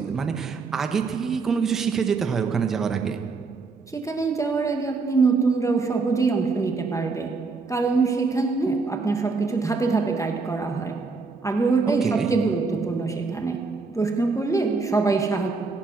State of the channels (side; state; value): left; quieter; 4.3 dB